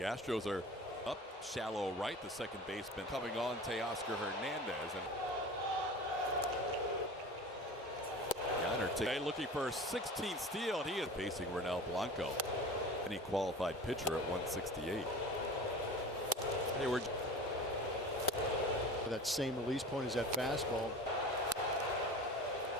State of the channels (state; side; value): normal; both; correlation 0.36